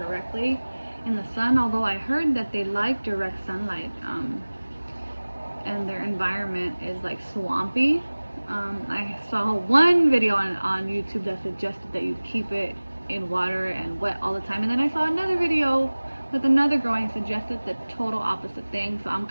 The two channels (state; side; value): inverted; both; correlation -1.00